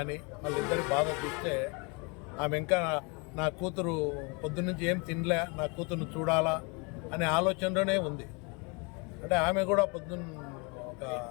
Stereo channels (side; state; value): right; quieter; 31.3 dB